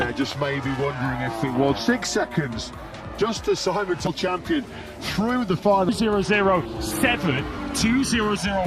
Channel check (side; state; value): both; identical; correlation 1.00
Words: just maybe wondering if it was 6 seconds. Just as Simon Till champion through the final. 007,